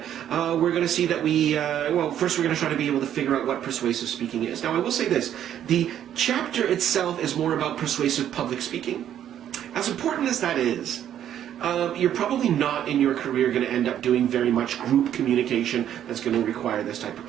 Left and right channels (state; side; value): quieter; left; 10.5 dB